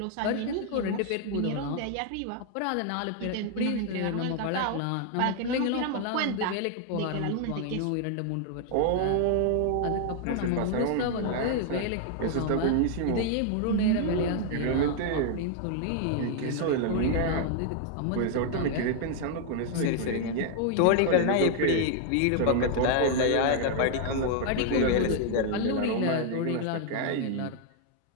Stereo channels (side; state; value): both; different; correlation 0.00